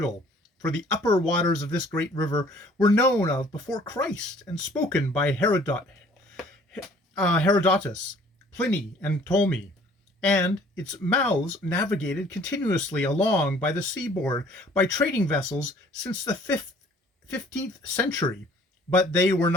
for the upper waters of this great river were known of before Christ and spoken by Herodotus, Pliny, and Ptolemy, and its mouths navigated continuously along by the seaboard by trading vessels since the 15th century, but they were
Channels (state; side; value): normal; both; correlation 0.55